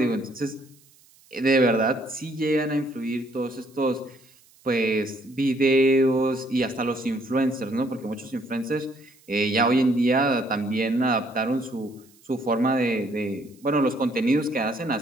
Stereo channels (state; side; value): noise; right; hiss, 29 dB below the sound